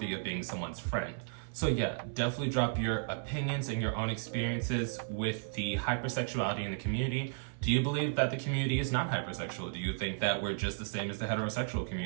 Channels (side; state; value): left; silent; 55 dB below the other